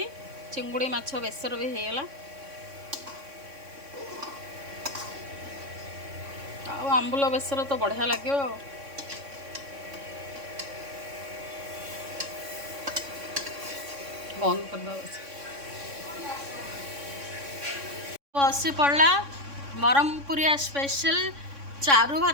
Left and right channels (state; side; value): late; left; 3.6 ms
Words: चिंगुड़ी माछ बेसर भी होगला आंबुल बेसर तो बढ़िया लगे बंद कर बसी पड़ा ब्रह्मपुरिया स्पेशल चारू